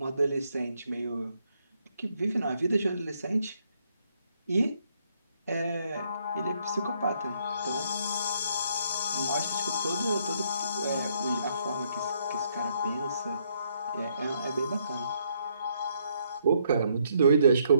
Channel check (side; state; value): both; inverted; correlation -0.71